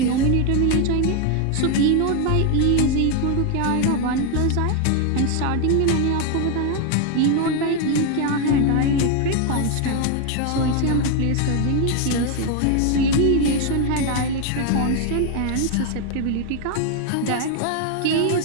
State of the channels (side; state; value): both; different; correlation 0.01